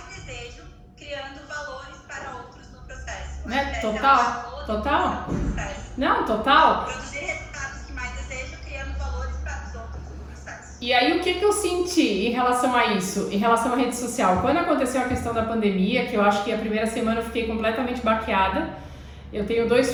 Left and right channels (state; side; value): identical; both; correlation 1.00